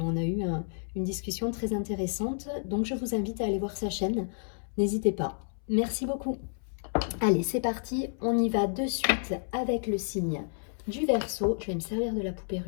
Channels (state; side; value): silent; right; 58 dB below the other